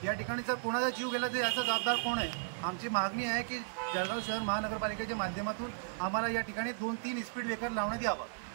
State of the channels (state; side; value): silent; left; digital silence